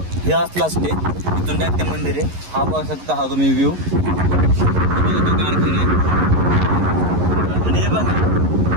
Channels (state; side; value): late; left; 11 ms